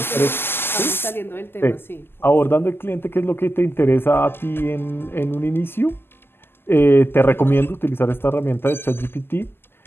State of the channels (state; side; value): late; right; 0.11 ms